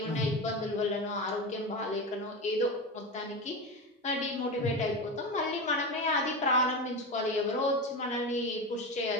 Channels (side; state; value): both; normal; correlation 0.21